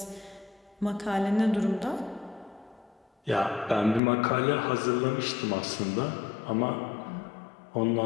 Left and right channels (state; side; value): drops out; right; at 4.0 s